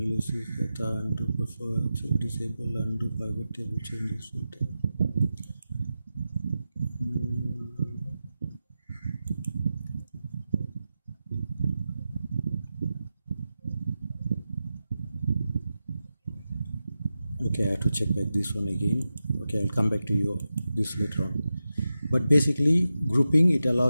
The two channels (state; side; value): inverted; both; correlation -0.92